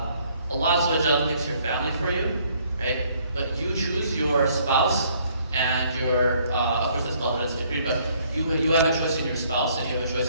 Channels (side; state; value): both; inverted; correlation -0.64